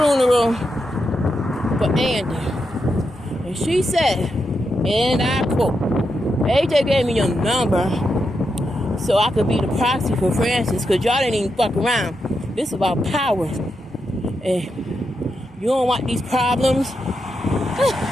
for Andy. And she said, and I quote, AJ gave me your number so I could be the proxy for Francis, because y'all didn't even fuck around. This is about power. And you don't want these problems.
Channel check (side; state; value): both; normal; correlation 0.85